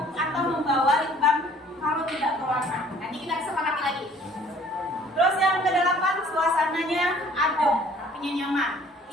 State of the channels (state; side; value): normal; both; correlation 0.55